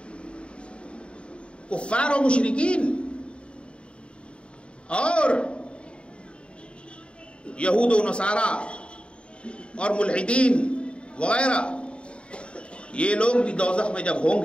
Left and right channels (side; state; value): right; late; 0.056 ms